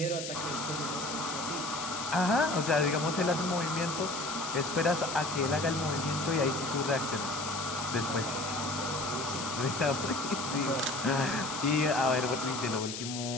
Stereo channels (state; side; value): noise; left; hiss, 7 dB below the sound